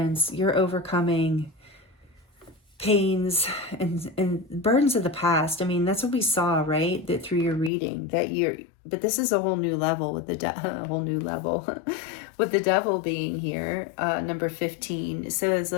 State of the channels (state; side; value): drops out; right; at 7.7 s